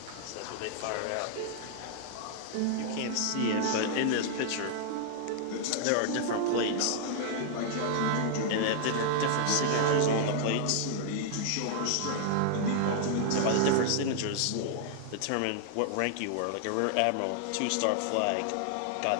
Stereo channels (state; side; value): different; both; correlation -0.01